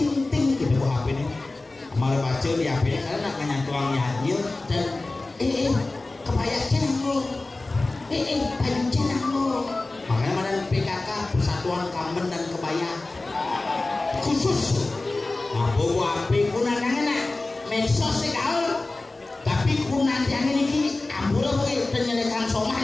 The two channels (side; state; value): right; quieter; 3.1 dB